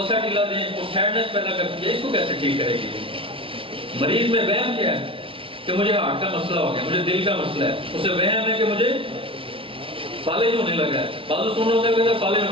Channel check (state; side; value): late; left; 0.26 ms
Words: دیں، وہ سیڈنس پیدا کرتی ہے، اس کو کیسے ٹھیک کرے گی؟ مریض میں وہم کیا ہے کہ مجھے ہارٹ کا مسئلہ ہو گیا، مجھے دل کا مسئلہ ہے. اسے وہم ہے کہ مجھے فالج ہونے لگا ہے. بازو سننا ہوتا ہے کہ فالج ہونے